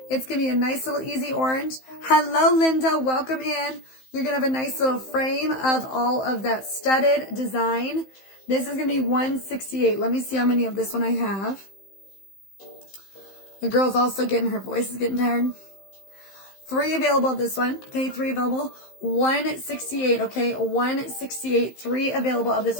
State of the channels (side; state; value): right; late; 15 ms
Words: It's going to be a nice little easy orange. Hello, Linda. Welcome in. You're going to have a nice little frame of all of that studded design. This is going to be 168. Let me see how many of this one I have. The girl's also her voice is getting tired. 3 available of this one. Okay, 3 available. 168, okay? 168. 3 available of